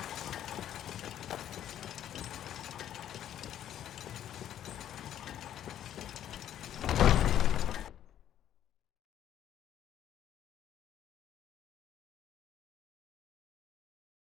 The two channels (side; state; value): right; quieter; 10.9 dB